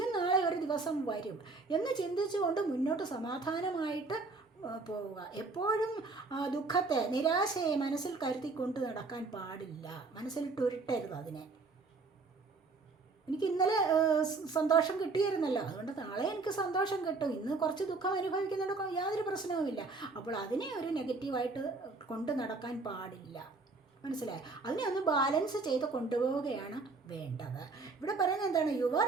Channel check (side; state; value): left; quieter; 3.9 dB